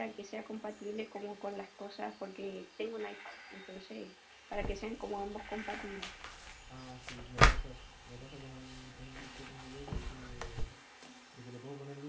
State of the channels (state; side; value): identical; both; correlation 1.00